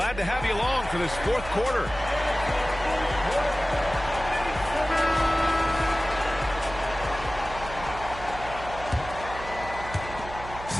to have you along for this 4th quarter.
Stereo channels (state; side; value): noise; right; hum, 12 dB below the sound